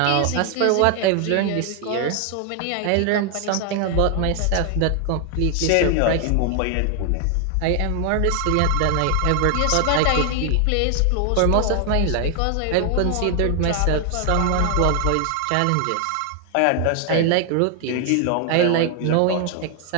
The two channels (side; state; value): both; different; correlation 0.00